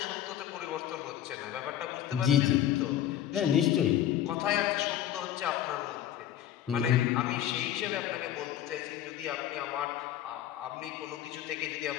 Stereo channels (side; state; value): right; quieter; 11.3 dB